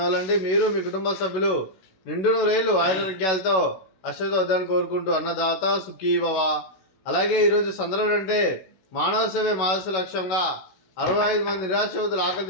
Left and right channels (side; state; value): right; late; 16 ms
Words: మీరు మీ కుటుంబ సభ్యులు నిండు నూరేళ్లు ఆరోగ్యాలతో అశ్వద్ధాన్ని కోరుకుంటూ అన్నదాత సుఖీ భవ. అలాగే ఈరోజు సందర్భం అంటే మానవ సేవే మానస లక్ష్యంగా 65 మంది నిరాశ్రతులు ఆకలి